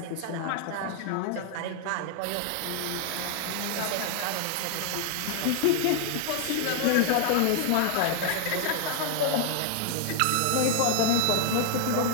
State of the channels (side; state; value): both; different; correlation 0.00